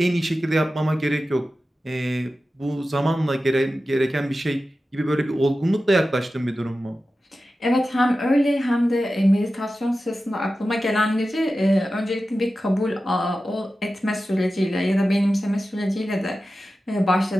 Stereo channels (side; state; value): both; normal; correlation 0.94